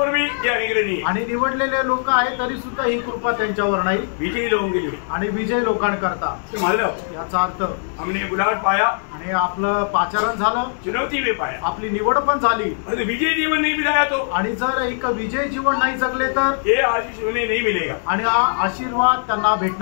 भी ये अनुग्रह नहीं है आणि निवडलेले लोक आहेत तरी सुद्धा ही कृपा त्यांच्यावर नाही। विजयी लोगों के लिए आणि विजय लोकांकरता मतलब याचा अर्थ हमने बुलाट पाया आणि आपलं पाचारण झालं, चुनौती में पाया, आपली निवड पण झाली। विजय जीवन नहीं बिताया तो आणि जर एक विजय जीवन नाही जगले तर ये आशीष उन्हें नहीं मिलेगा आणि हा आशीर्वाद त्यांना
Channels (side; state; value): right; silent; digital silence